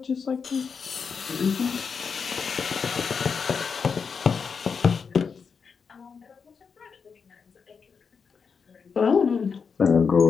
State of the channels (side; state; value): right; quieter; 5.8 dB